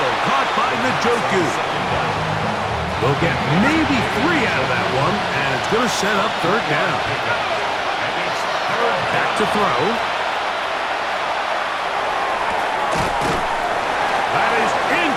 caught by Njoku. They'll get maybe 3 out of that one, and it's going to set up 3rd down. Back to throw. That is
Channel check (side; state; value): both; identical; correlation 1.00